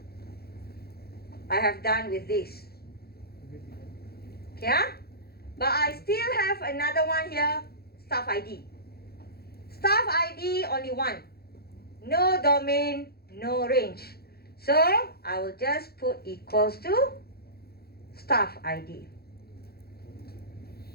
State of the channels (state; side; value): late; right; 0.46 ms